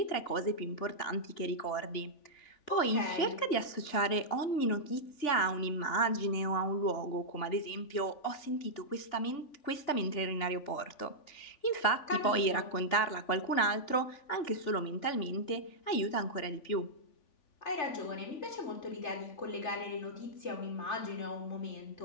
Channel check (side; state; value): right; late; 3.5 ms